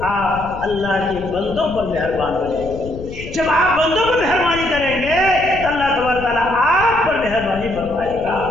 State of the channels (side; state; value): left; noise; rumble, 12 dB below the sound